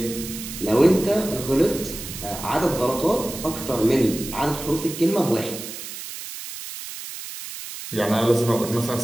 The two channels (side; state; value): right; noise; hiss, 10 dB below the sound